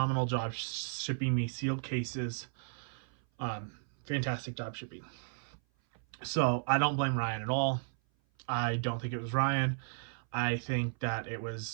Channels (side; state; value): left; silent; 55 dB below the other